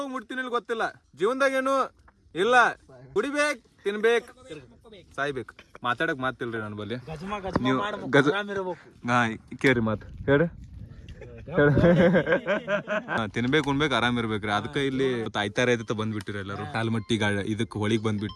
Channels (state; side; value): identical; both; correlation 1.00